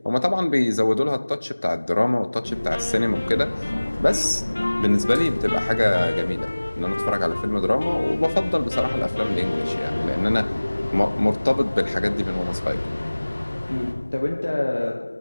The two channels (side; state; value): both; inverted; correlation -1.00